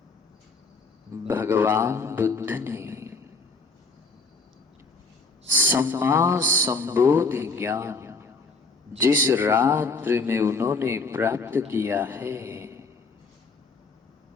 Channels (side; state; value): right; quieter; 4.0 dB